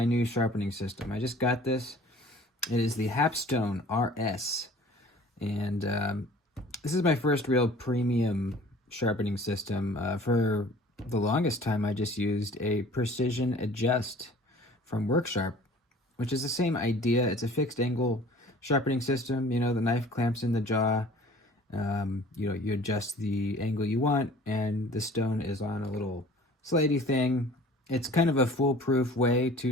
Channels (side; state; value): both; normal; correlation 0.48